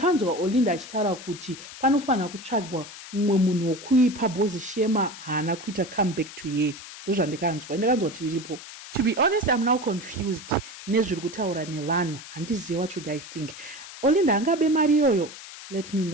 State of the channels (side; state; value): left; noise; hiss, 14 dB below the sound